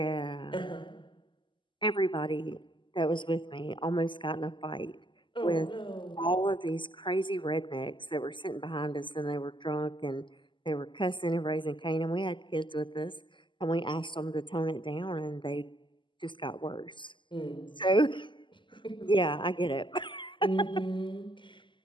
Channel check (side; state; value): right; late; 0.24 ms